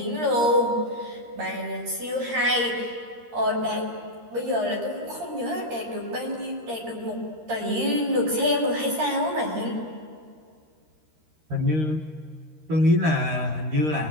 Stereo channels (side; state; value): left; late; 13 ms